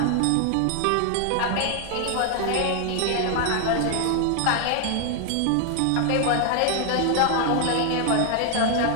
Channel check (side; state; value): both; different; correlation 0.00